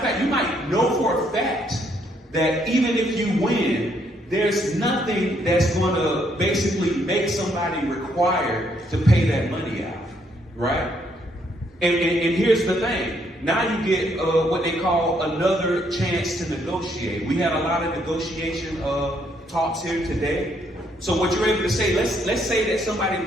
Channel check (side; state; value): both; normal; correlation 0.71